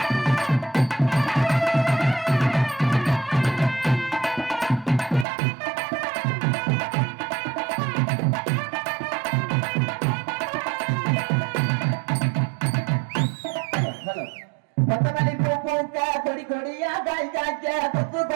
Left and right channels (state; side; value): drops out; left; at 5.2 s